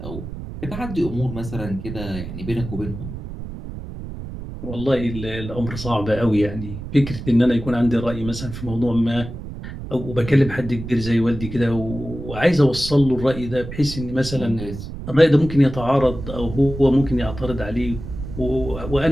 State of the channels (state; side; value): noise; right; rumble, 10 dB below the sound